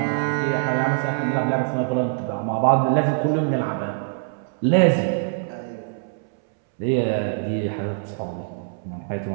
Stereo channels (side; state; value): left; silent; 63 dB below the other